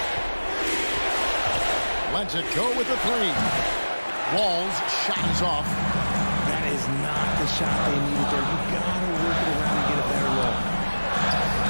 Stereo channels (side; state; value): both; inverted; correlation -1.00